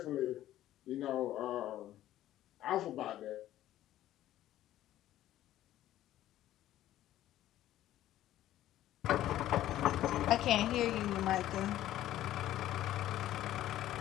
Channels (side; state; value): right; quieter; 13.5 dB